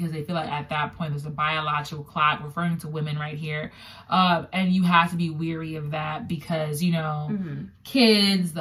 they feel like at that point there's a biological clock, referring to women right here. And you have to be weary of that because, kids, the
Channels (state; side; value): identical; both; correlation 1.00